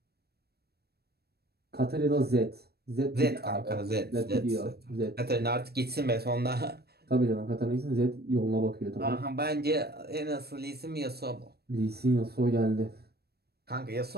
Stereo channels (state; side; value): late; left; 0.47 ms